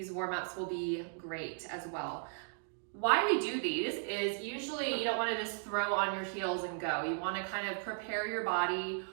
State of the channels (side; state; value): left; silent; 54 dB below the other